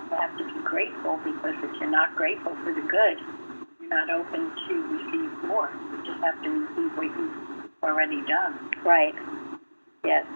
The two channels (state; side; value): inverted; both; correlation -1.00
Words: have to be grateful, because if you're not grateful for the good, you're not open to receive more. You just have to receive what you've already done. Right. Yes.